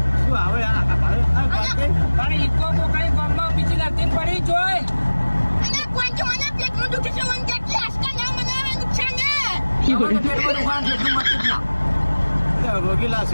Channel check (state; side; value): inverted; both; correlation -1.00